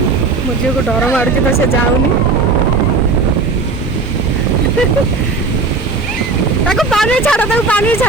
मो झील को डर मारुची तो से जाऊनी ताको पानी छाड़ा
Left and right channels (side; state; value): left; quieter; 4.0 dB